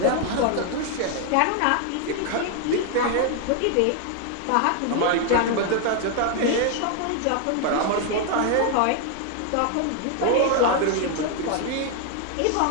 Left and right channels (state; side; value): different; both; correlation 0.00